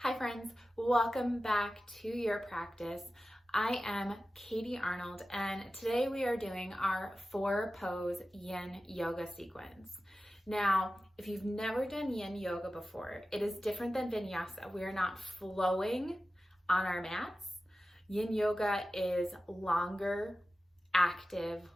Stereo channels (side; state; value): both; normal; correlation 0.94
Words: friends, welcome back to your practice. I am Katie Arnold, and today we are doing our 4-pose yin yoga sequence. Now, if you've never done yin yoga before, it is different than vinyasa. We are not flowing on our mats. Yin yoga is longer, active